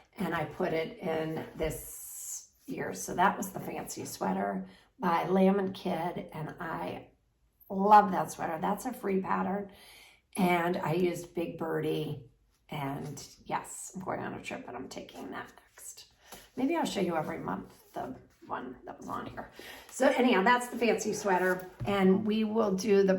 and I put it in this year. So that was the fancy sweater by Lamb & Kid, and I love that sweater. That's a free pattern. And I used Big Birdie, and yes, I'm going on a trip, and I'm taking that next. Maybe I'll show you every month the one that was on here. So anyhow, that's the fancy sweater, and we will do the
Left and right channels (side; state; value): both; identical; correlation 1.00